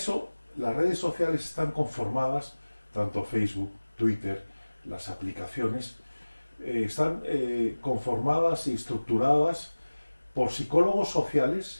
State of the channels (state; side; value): inverted; both; correlation -1.00